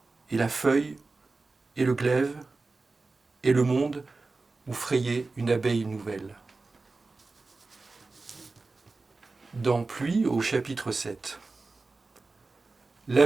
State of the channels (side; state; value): left; quieter; 3.7 dB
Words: et la feuille, et le glaive, et le monde, où frayait une abeille nouvelle. Dans Pluie, au chapitre 7.